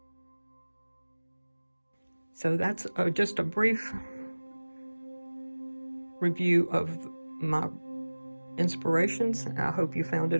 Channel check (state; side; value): inverted; both; correlation -1.00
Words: So that's just a brief review of my inspirations. I hope you found